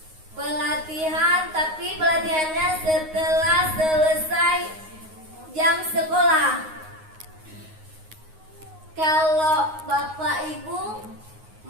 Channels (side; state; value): left; late; 9.5 ms